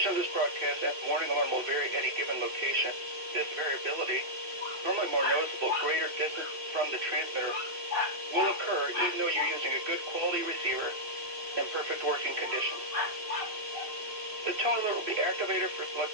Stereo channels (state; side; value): late; left; 3.0 ms